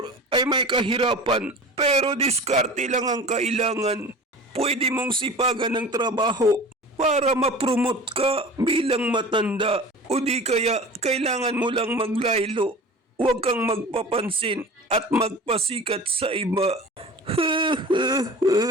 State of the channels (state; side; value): normal; both; correlation 0.38